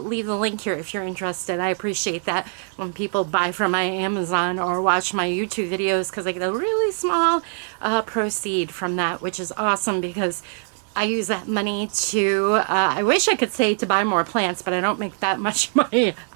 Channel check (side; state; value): left; silent; 59 dB below the other